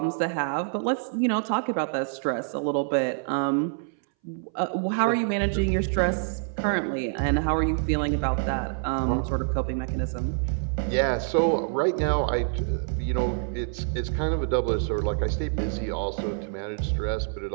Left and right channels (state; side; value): silent; left; 61 dB below the other